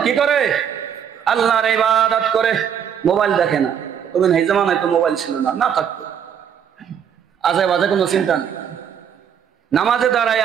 কি করে? আল্লাহর ইবাদত করে, মোবাইল দেখে না। তবে এই জামানায় তো মোবাইল ছিল না, না থাকতো আজে বাজে কোনো চিন্তা নেই, নামাজে দাঁড়ায়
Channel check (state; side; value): quieter; left; 8.3 dB